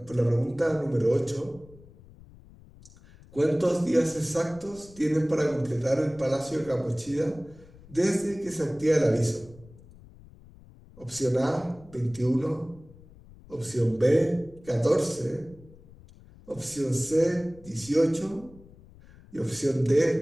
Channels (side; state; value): left; noise; rumble, 23 dB below the sound